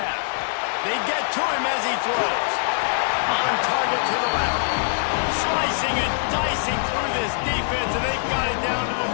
They get to him as he throws. On target to the left. Slicing and dicing through this defense, and they've got it down to the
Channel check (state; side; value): silent; right; digital silence